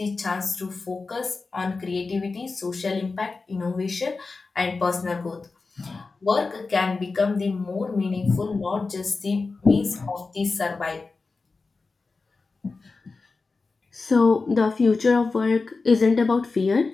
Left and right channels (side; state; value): right; quieter; 4.0 dB